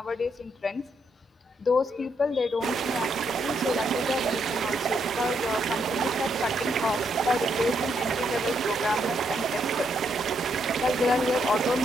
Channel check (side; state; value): both; normal; correlation 0.77